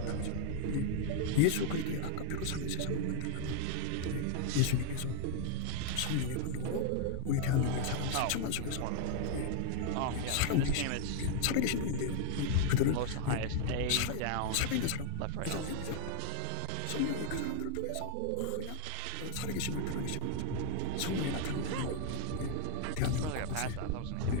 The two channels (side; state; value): both; different; correlation 0.00